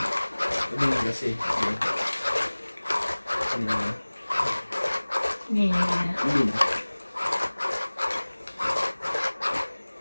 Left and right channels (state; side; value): inverted; both; correlation -1.00